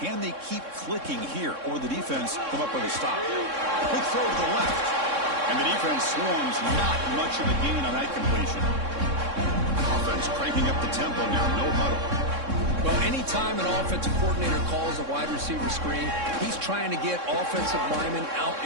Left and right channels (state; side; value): late; left; 3.6 ms